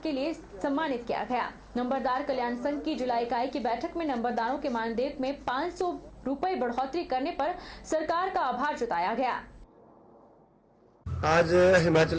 के लिए सम्मानित किया गया। नंबरदार कल्याण संघ की जिला इकाई की बैठक में नंबरदारों के मानदेय में 500 रुपए बढ़ोतरी करने पर सरकार का आभार जताया गया। आज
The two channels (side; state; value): both; identical; correlation 1.00